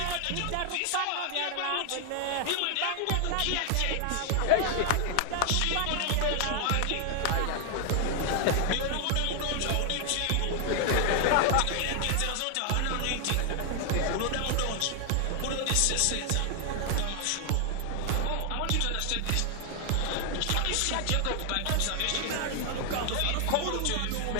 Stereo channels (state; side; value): different; both; correlation 0.00